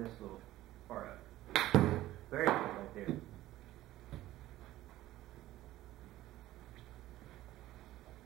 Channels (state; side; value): quieter; left; 15.3 dB